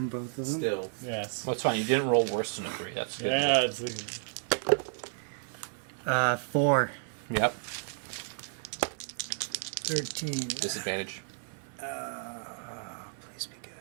in both of them? still. Yes. Well, it's fine. You didn't roll worse than a 3. That's good. Yeah, it's like, 4. Yep. 13. Disadvantage. Please be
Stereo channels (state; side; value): silent; left; 56 dB below the other